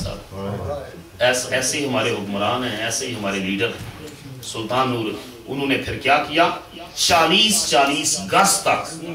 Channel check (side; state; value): both; identical; correlation 1.00